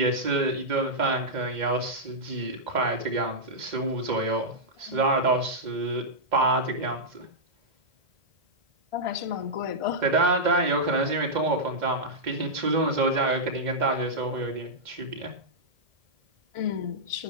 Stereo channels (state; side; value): late; left; 2.1 ms